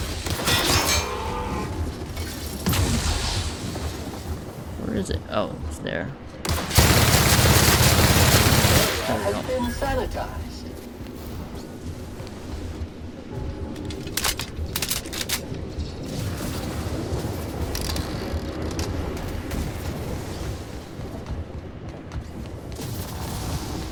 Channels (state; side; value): identical; both; correlation 1.00